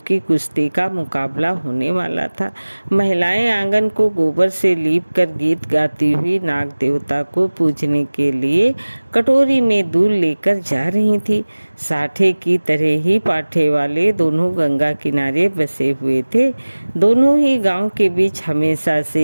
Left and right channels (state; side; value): inverted; both; correlation -1.00